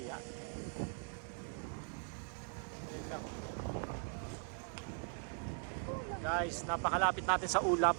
Ayun lang. Guys, napakalapit natin sa ulap.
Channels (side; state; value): left; silent; 51 dB below the other